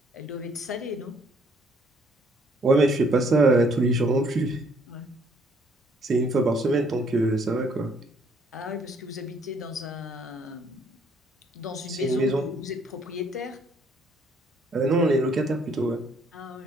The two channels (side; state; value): both; normal; correlation 0.64